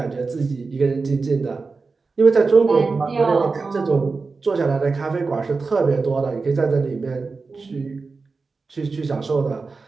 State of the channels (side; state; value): left; quieter; 4.3 dB